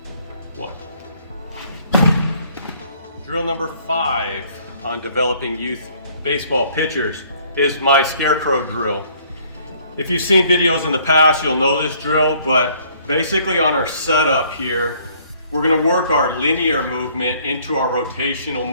1. Drill number 5 on developing youth baseball pitchers is my Scarecrow drill. If you've seen videos in the past, you'll know this drill, but basically on our setup here, we're going to work our linear movement into our rotational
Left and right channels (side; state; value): both; inverted; correlation -0.61